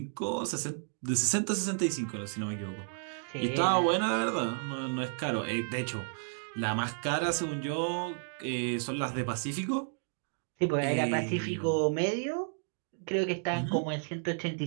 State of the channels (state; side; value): silent; left; digital silence